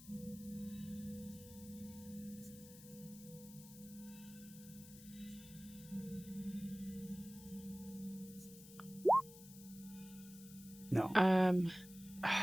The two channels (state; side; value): noise; left; hiss, 17 dB below the sound